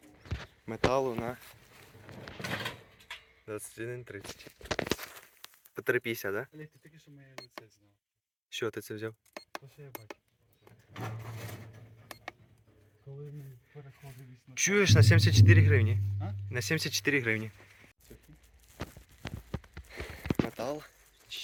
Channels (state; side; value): identical; both; correlation 1.00